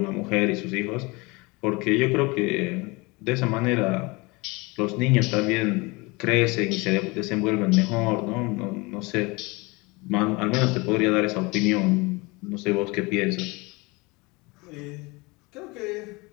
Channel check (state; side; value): quieter; right; 25.4 dB